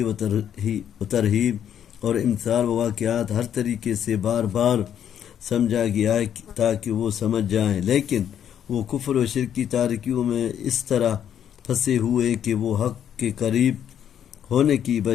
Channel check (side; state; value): right; quieter; 9.4 dB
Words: و ترہیب اور امثال و واقعات ہر طریقے سے بار بار سمجھا گیا ہے تاکہ وہ سمجھ جائیں لیکن وہ کفر و شرک کی تاریکیوں میں اس طرح پھنسے ہوئے کہ وہ حق کے قریب ہونے کی